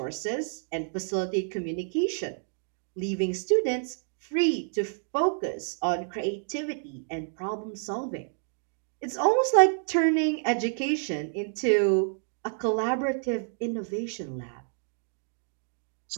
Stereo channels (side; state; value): left; silent; digital silence